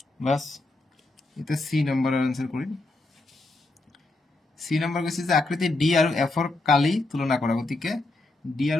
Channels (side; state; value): right; quieter; 3.0 dB